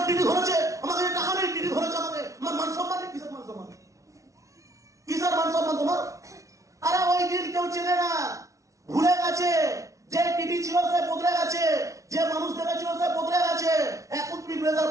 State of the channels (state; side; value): late; left; 0.15 ms